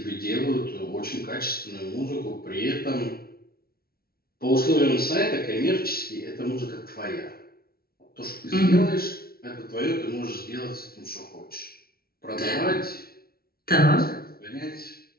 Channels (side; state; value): right; late; 0.44 ms